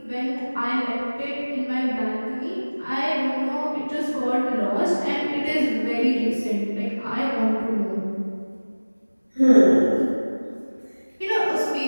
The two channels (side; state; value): both; inverted; correlation -1.00